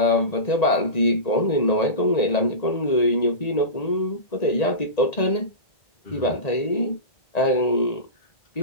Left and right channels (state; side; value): late; right; 1.9 ms